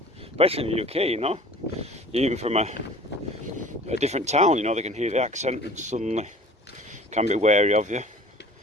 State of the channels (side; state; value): both; normal; correlation 0.46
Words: especially in the UK, you know, even from a different town, you know, they can hear the accent and suddenly can be wary of you,